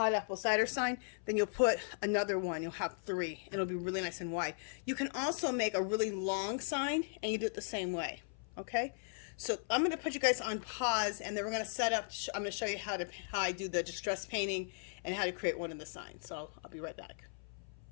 apple cider sign, then you'll put another one. You'll have 3. And it'll be really nice and wide. You can also make a really long sign, and you do it the same way. Okay. So I'm going to put you guys on pause, and then we're going to set up. I'm going to show you how I do the distress painting and how to create one of the signs. So I'll be right back.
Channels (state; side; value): silent; right; 53 dB below the other